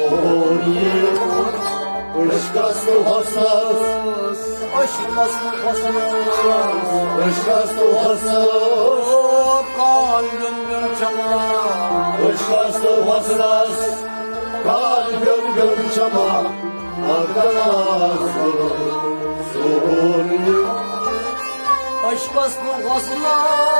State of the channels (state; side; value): inverted; both; correlation -1.00